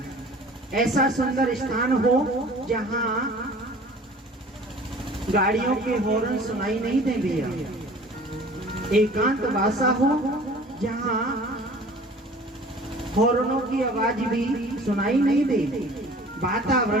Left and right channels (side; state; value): both; normal; correlation 0.46